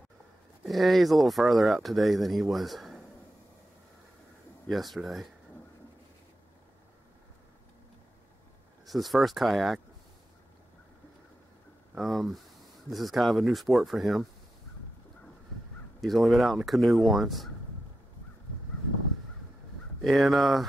Yeah, he's a little farther out today than he was yesterday. This is his first kayak. This is kind of a new sport for him. He's only been out in a canoe once. And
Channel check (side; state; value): both; normal; correlation 0.89